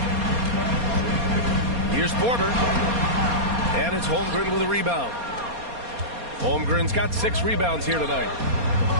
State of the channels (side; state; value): left; late; 4.2 ms